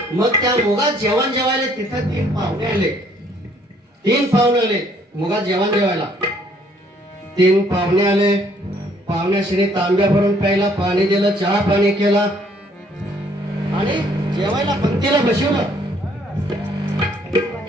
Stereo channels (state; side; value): normal; both; correlation 0.64